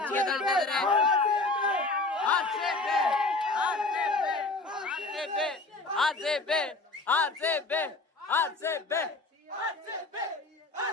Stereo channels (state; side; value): quieter; right; 3.3 dB